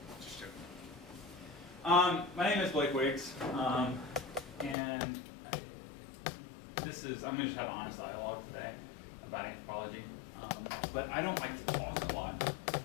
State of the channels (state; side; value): drops out; right; at 4.8 s